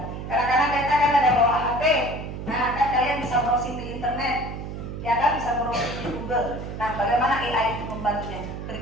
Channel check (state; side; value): noise; right; hum, 8 dB below the sound